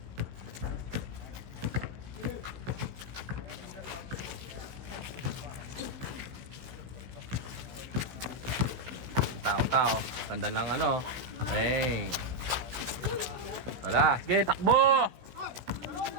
Tao. Ganda lang ano. Bang. Wala. Sige, takbo!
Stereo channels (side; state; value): left; late; 16 ms